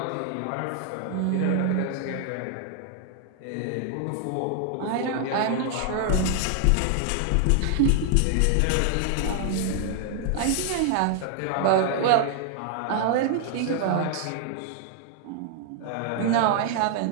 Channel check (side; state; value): both; different; correlation 0.00